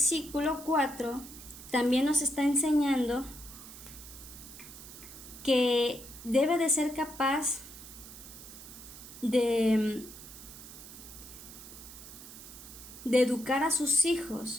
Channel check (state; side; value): noise; right; hiss, 15 dB below the sound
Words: 4 también nos está enseñando que debe de ser capaz de educar a sus